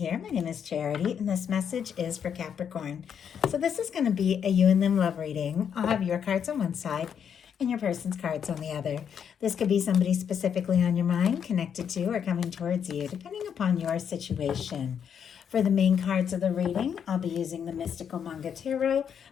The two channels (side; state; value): right; quieter; 7.9 dB